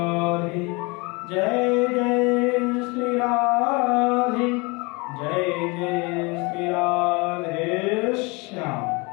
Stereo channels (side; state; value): right; quieter; 27.6 dB